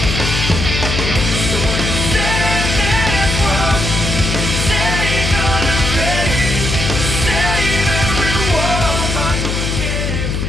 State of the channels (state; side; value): noise; left; hum, 1 dB below the sound